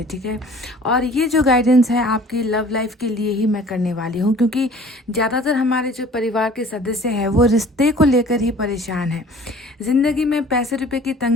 ठीक है। और ये जो गाइडेंस है आपकी लव लाइफ के लिए ही मैं करने वाली हूँ, क्योंकि ज़्यादातर हमारे जो परिवार के सदस्य हैं वो रिश्ते को लेकर ही परेशान हैं। ज़िंदगी में पैसे रुपए की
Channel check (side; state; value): both; normal; correlation 0.49